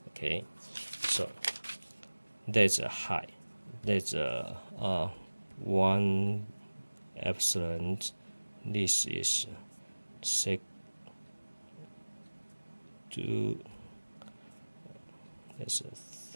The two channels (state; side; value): inverted; both; correlation -1.00